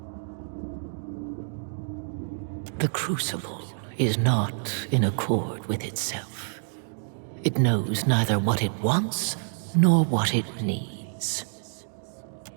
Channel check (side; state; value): left; silent; digital silence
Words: The Crucible is not in accord with itself. It knows neither what it wants nor what it needs.